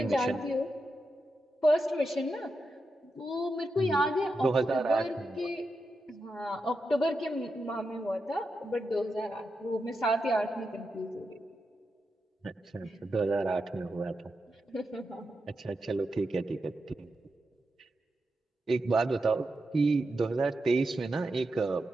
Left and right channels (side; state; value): both; normal; correlation 0.88